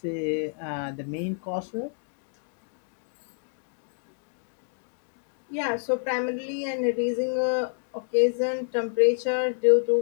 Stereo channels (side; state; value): right; silent; 59 dB below the other